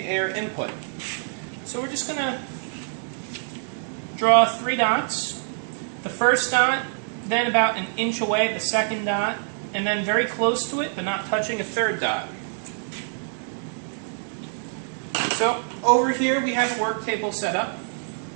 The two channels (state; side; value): silent; left; digital silence